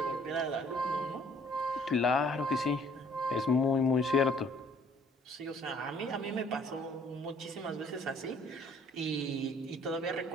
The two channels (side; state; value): both; normal; correlation 0.59